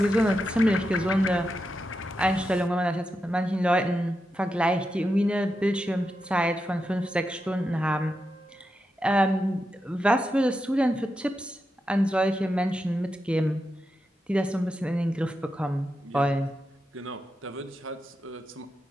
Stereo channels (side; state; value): both; normal; correlation 0.87